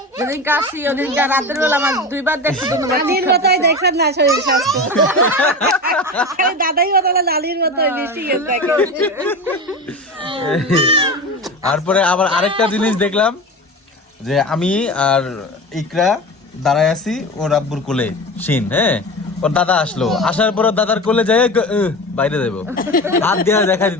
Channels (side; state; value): both; normal; correlation 0.28